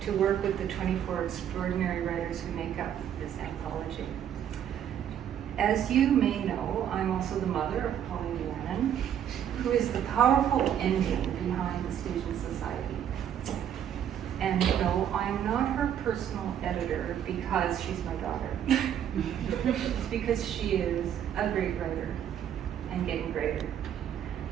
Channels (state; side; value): quieter; left; 9.7 dB